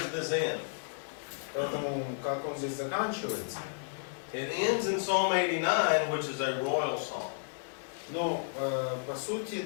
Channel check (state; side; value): silent; right; digital silence